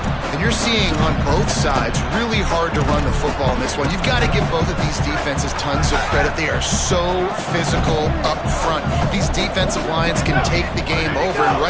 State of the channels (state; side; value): identical; both; correlation 1.00